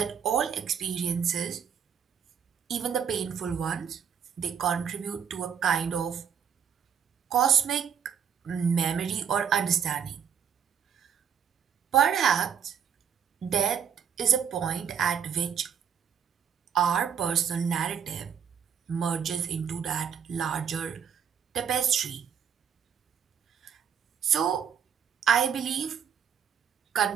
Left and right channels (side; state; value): left; quieter; 7.7 dB